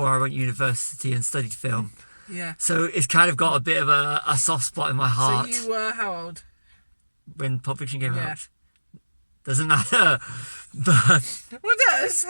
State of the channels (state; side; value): inverted; both; correlation -1.00